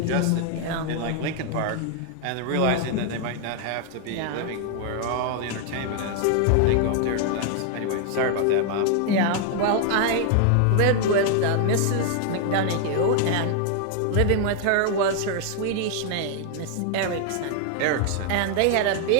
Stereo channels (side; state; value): both; different; correlation 0.00